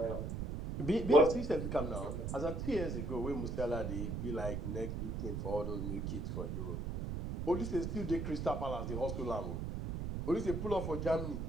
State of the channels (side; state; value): right; noise; rumble, 3 dB below the sound